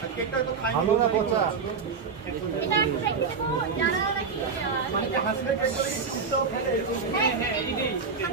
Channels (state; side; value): quieter; left; 5.3 dB